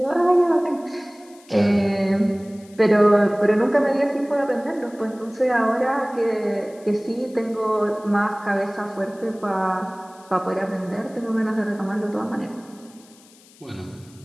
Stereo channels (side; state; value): left; noise; hiss, 26 dB below the sound